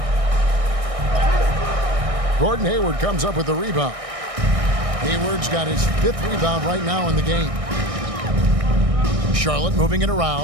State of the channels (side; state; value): left; late; 1.6 ms